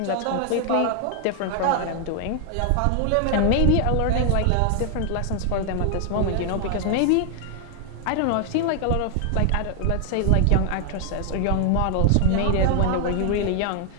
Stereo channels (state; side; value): different; both; correlation 0.00